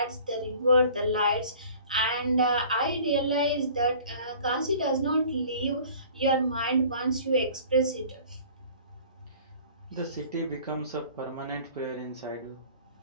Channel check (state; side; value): inverted; both; correlation -0.48